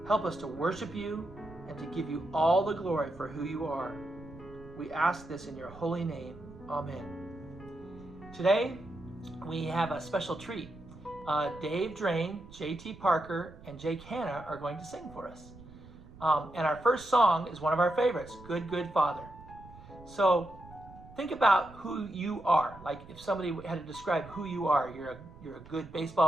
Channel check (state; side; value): noise; right; rumble, 19 dB below the sound